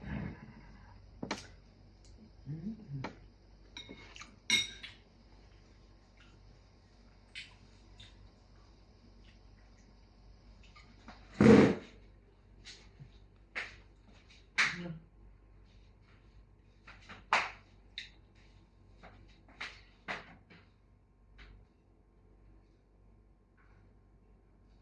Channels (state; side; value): identical; both; correlation 1.00